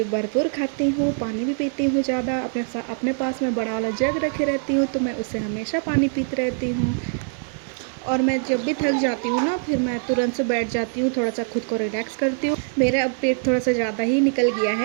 भरपूर खाती हूँ, पानी भी पीती हूँ ज़्यादा। अपने पास में बड़ा वाला जग रखे रहती हूँ तो मैं उससे हमेशा पानी पीती रहती हूँ। और मैं जब भी थक जाती हूँ ना फिर मैं तुरंत से बैठ जाती हूँ, थोड़ा सा खुद को रिलैक्स करती हूँ। मेरा अब पेट थोड़ा सा ज़्यादा ही निकल गया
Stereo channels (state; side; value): silent; left; 58 dB below the other